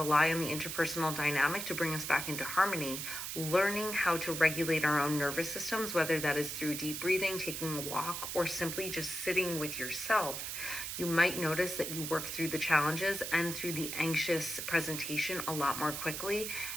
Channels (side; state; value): right; noise; hiss, 5 dB below the sound